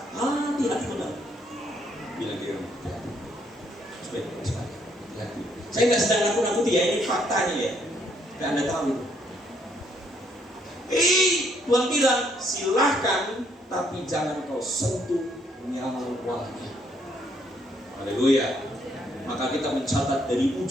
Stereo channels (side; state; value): both; normal; correlation 0.70